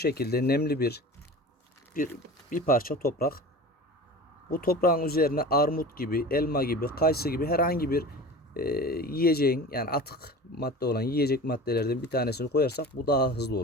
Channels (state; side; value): normal; both; correlation 0.36